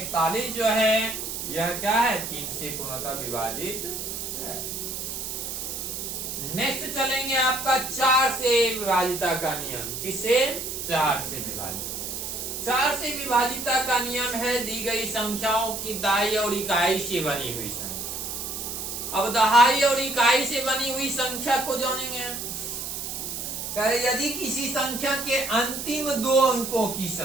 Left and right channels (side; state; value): right; noise; hiss, 5 dB below the sound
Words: जो है यह क्या है, 3 से पूर्णतः विभाजित है। नेक्स्ट चलेंगे आपका 4 से विभाजिता का नियम। किससे, 4 से विभाजित। 4 से विभाजिता का नियम है दी गई संख्याओं की दाई और इकाई से बनी हुई संख्या। अब दहाई और इकाई से बनी हुई संख्या को जानेंगे। यदि किसी संख्या के अंतिम 2 अंकों की